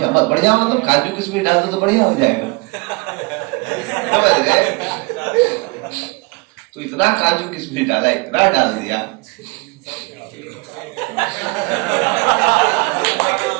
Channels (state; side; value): quieter; left; 29.6 dB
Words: बढ़िया मतलब काजू किशमिश डाल दो तो बढ़िया हो जाएगा, समझ गए? तो इतना काजू किशमिश डाला, इतना डाल दिया